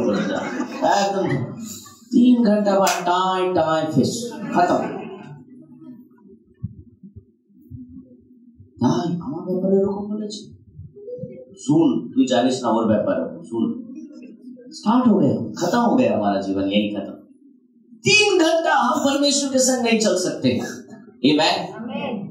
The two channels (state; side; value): identical; both; correlation 1.00